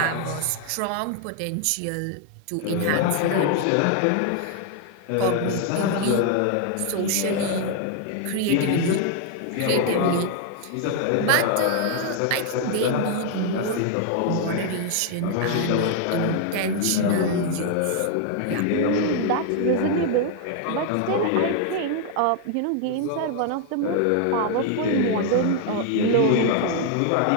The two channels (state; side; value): different; both; correlation 0.00